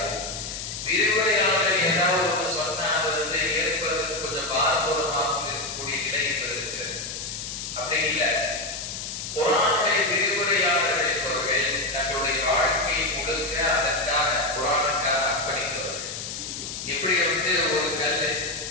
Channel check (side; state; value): left; noise; hiss, 7 dB below the sound